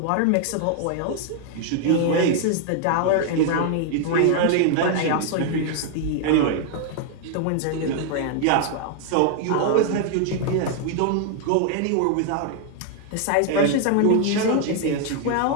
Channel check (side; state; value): both; different; correlation 0.00